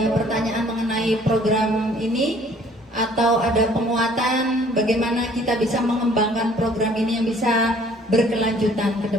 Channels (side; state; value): both; normal; correlation 0.56